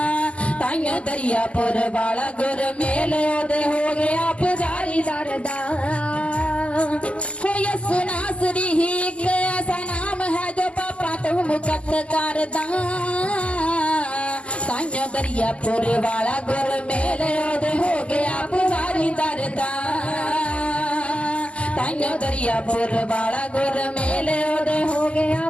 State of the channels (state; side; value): late; right; 0.059 ms